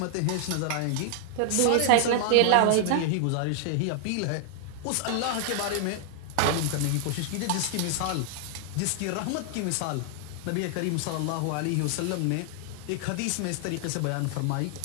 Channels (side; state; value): both; different; correlation 0.00